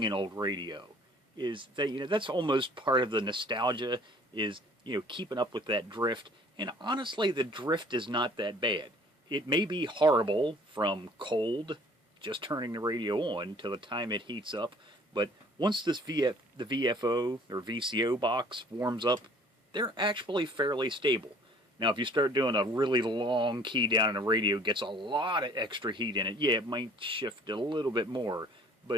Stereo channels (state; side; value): normal; both; correlation 0.53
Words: an old radio, is that, that's almost part of the nostalgia, is, keeping up with that drift. And honestly, the drift is not that bad. It may be horrible from cold, just turning the radio on, till the time it heats up, but once the VFO or VCO box warms up, they're actually fairly stable. Now, if you start doing a really long key down in a radio, it gets a lot of extra heat in it. Yeah, it might shift a little bit more,